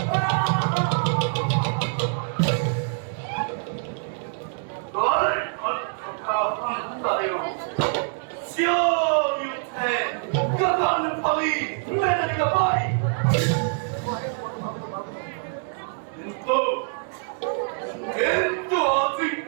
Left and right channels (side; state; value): left; silent; 58 dB below the other